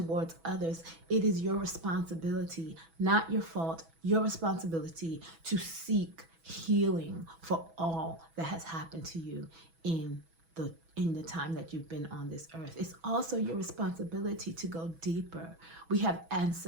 others. It is your responsibility, not your fault, your responsibility to seek healing for all that has happened to you in the time that you've been on this earth. It's also your responsibility to go deeper. We have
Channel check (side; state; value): left; late; 6.1 ms